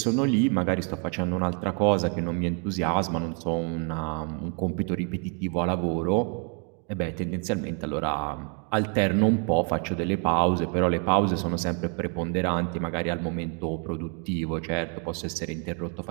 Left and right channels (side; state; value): left; quieter; 38.9 dB